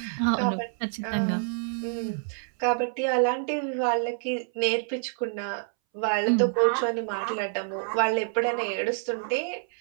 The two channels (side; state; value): left; silent; 60 dB below the other